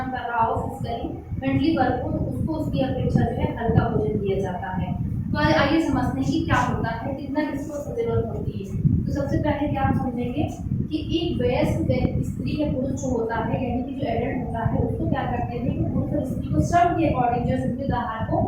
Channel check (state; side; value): identical; both; correlation 1.00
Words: कर रहा हो फिजिकली, मेंटली वर्क हो, तो उसको उसकी अपेक्षा जो है हल्का भोजन दिया जाता है। तो आइए समझते हैं कि क्या होता है, कितना किसको जरूरत होती है। तो सबसे पहले क्या हम समझेंगे कि एक वयस्क स्त्री या पुरुष जो होता है, यानी कि जो एडल्ट होता है, उसको क्या करते हैं कि पुरुष और स्त्री को श्रम के अकॉर्डिंग जो संतुलित आहार को